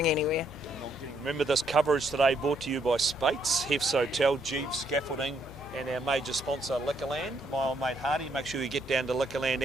anywhere. Remember this coverage today brought to you by Spates, Hef's Hotel, Jeeves Scaffolding, and our major sponsor Liquorland. My old mate Hardy. Make sure you get down to Liquorland,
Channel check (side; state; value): left; noise; hum, 18 dB below the sound